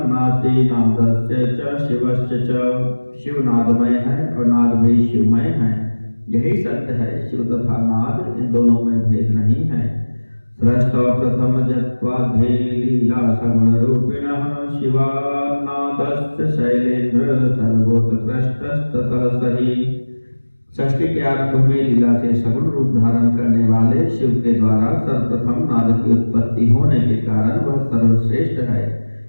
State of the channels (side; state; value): both; inverted; correlation -1.00